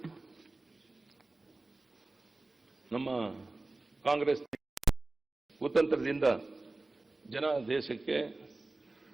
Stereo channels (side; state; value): left; quieter; 3.1 dB